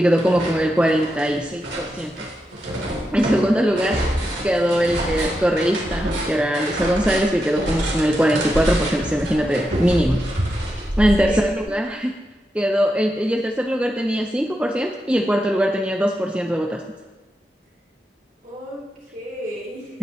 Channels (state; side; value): normal; both; correlation 0.86